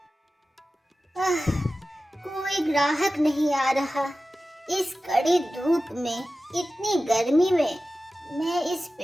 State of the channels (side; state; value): both; normal; correlation 0.95